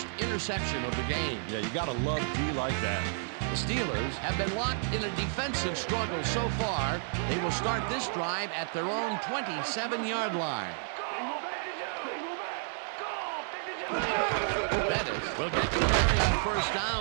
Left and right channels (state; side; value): silent; left; 57 dB below the other